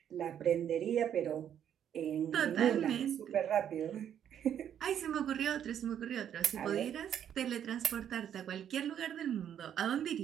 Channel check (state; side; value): quieter; left; 9.5 dB